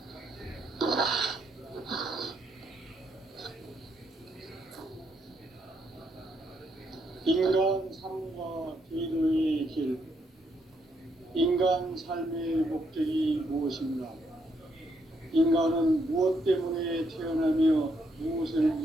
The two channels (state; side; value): normal; both; correlation 0.75